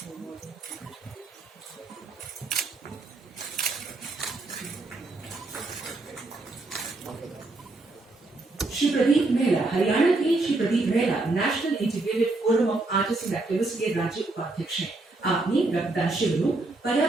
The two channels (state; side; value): quieter; left; 3.2 dB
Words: श्री प्रदीप मेहला हरियाणा के Shri Pradeep Mehla national integrated forum of artist and activist के राज्य उपाध्यक्ष हैं। आपने रक्तदान शिविरों,